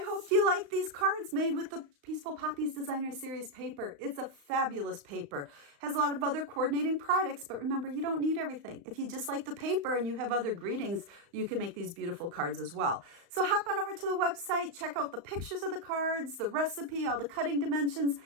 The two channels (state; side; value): late; left; 35 ms